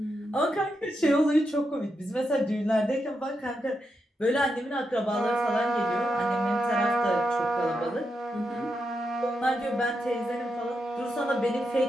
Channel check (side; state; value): both; normal; correlation 0.85